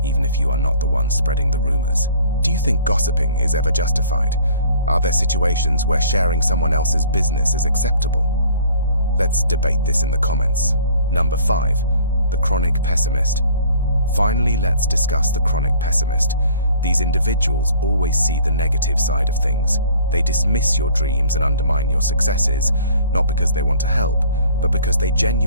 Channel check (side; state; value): both; inverted; correlation -0.53